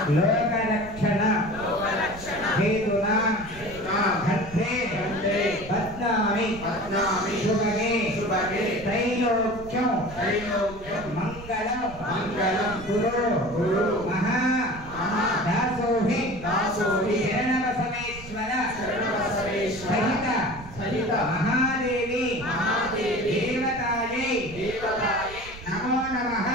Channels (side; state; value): right; noise; rumble, 16 dB below the sound